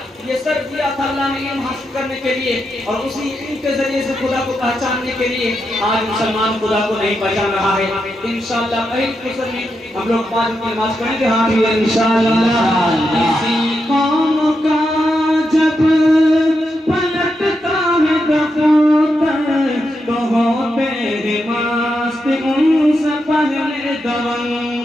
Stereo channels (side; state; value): both; normal; correlation 0.85